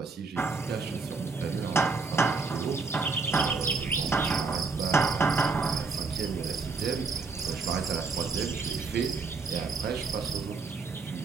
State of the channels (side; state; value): left; quieter; 4.4 dB